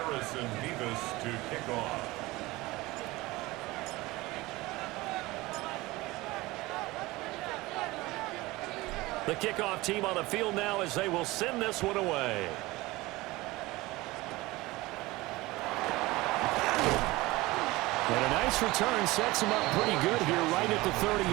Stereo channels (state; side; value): quieter; left; 20.4 dB